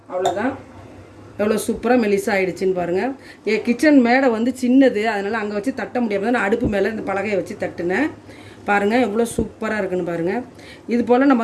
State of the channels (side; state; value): both; identical; correlation 1.00